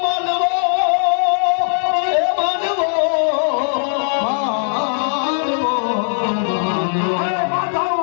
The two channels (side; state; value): right; silent; digital silence